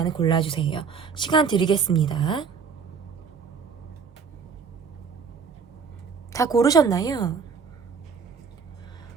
골라주세요. 시간 드리겠습니다. 다 고르셨나요?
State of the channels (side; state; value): left; quieter; 6.0 dB